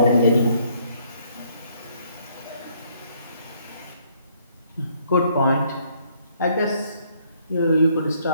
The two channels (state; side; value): inverted; both; correlation -0.66